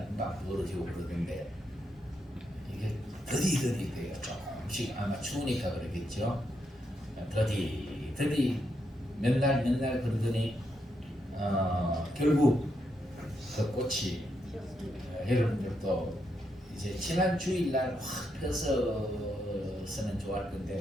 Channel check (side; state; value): both; normal; correlation 0.81